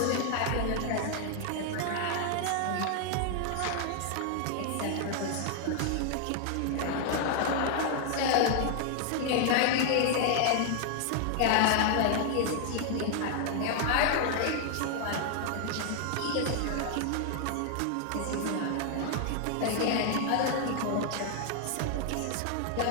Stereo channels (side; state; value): both; different; correlation 0.00